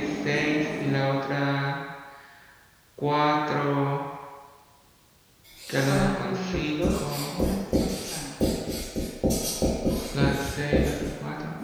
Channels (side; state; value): both; identical; correlation 1.00